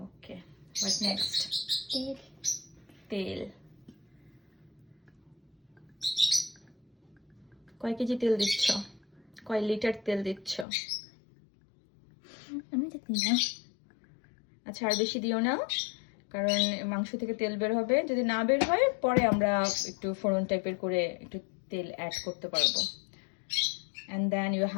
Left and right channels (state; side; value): drops out; right; at 10.7 s